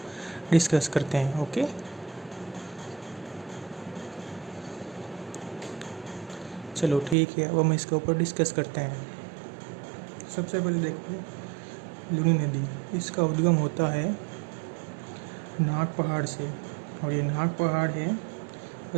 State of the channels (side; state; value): left; drops out; at 7.2 s